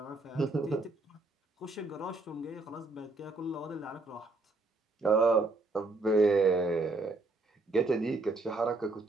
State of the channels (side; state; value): left; quieter; 3.3 dB